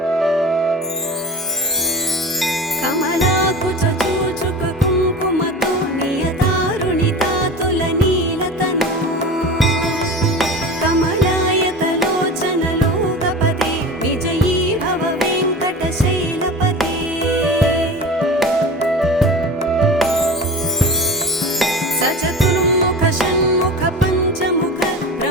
कमलाकुचूचुक कुङ्कुमतो नियतारुणितातुलनीलतनु कमलायतलोचनलोकपदे विजयी भव वेङ्कटशैलपते। सचतुर्मुख षण्मुख पञ्चमुख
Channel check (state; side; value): normal; both; correlation 0.33